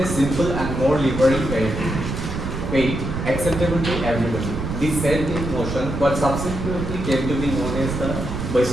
a simple and more liberal faith acceptable to everybody. This set in motion what subsequently came to be known as the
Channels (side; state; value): right; noise; rumble, 4 dB below the sound